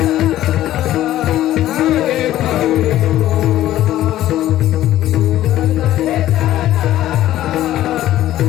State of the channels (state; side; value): quieter; right; 13.6 dB